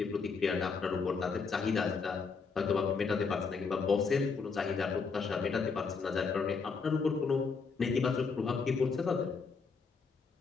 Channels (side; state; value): right; quieter; 5.0 dB